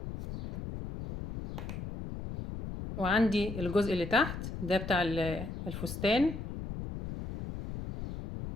وعندي الجزء اللي تحت ده بتاع الفستان،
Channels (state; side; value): noise; left; rumble, 7 dB below the sound